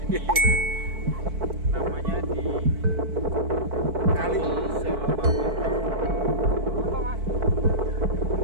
Namanya di Kali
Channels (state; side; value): late; left; 4.6 ms